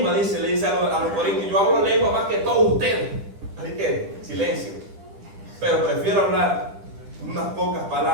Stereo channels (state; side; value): late; left; 10 ms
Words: le dice a los corintios, yo hablo lengua más que todos ustedes. Así que, silencio. Pero prefiero hablar unas pocas